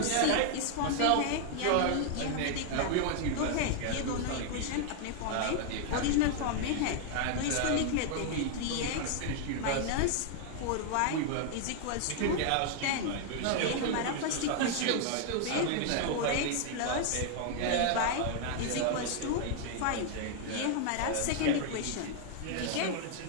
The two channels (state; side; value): different; both; correlation 0.00